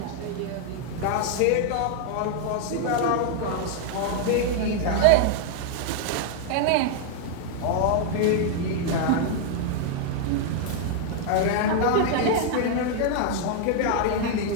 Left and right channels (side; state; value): both; different; correlation 0.00